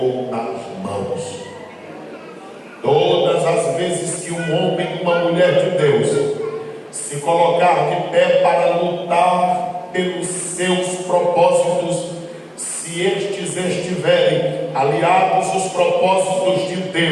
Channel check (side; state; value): both; identical; correlation 1.00